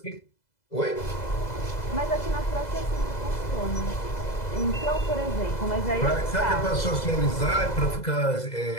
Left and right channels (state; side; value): late; right; 2.0 ms